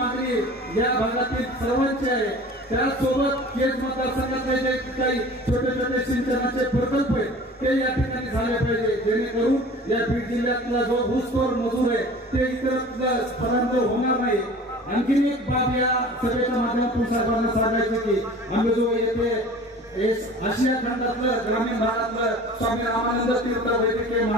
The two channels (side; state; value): both; normal; correlation 0.42